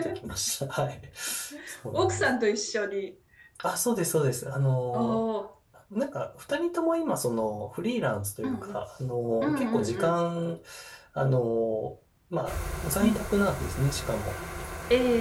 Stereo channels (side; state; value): both; identical; correlation 1.00